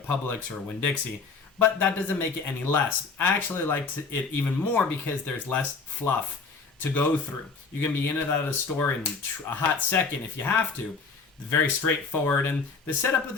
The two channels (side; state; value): right; quieter; 4.6 dB